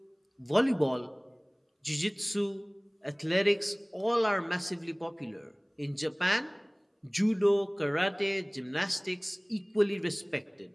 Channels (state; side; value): identical; both; correlation 1.00